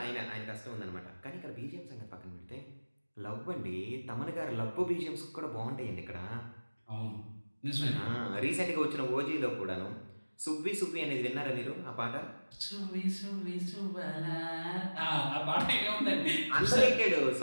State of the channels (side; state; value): both; inverted; correlation -1.00